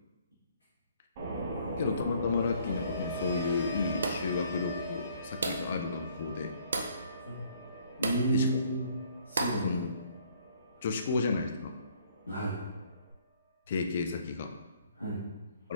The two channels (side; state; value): both; inverted; correlation -0.62